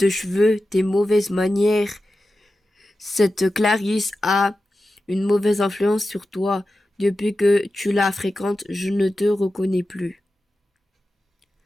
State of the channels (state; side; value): normal; both; correlation 0.93